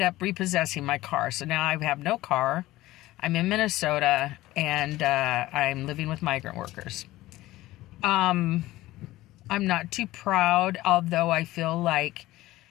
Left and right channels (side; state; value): right; quieter; 17.1 dB